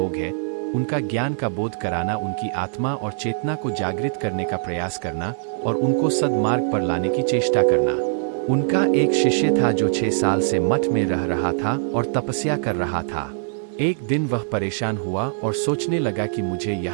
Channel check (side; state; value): left; silent; digital silence